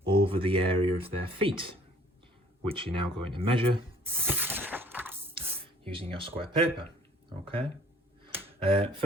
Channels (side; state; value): both; normal; correlation 0.57